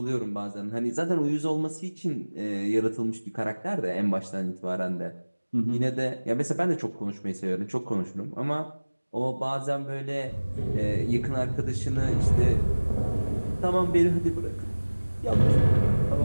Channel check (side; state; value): both; inverted; correlation -1.00